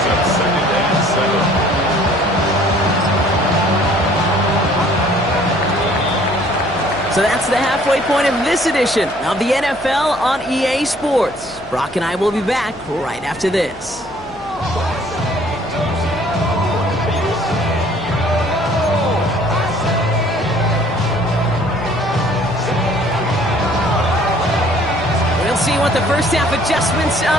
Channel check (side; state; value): left; noise; hum, 22 dB below the sound